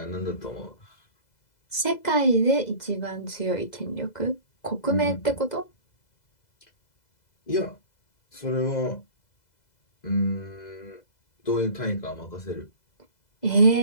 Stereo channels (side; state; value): right; late; 2.0 ms